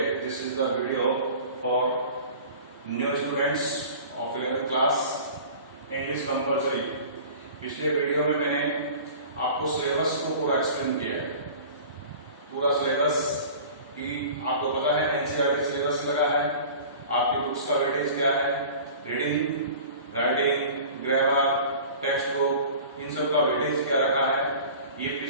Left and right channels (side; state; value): both; inverted; correlation -0.41